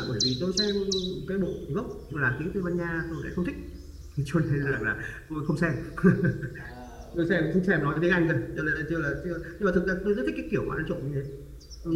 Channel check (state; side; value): identical; both; correlation 1.00